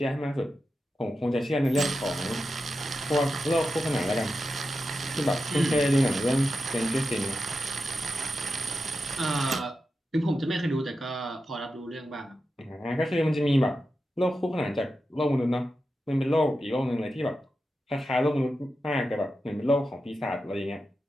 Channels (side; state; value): both; normal; correlation 0.90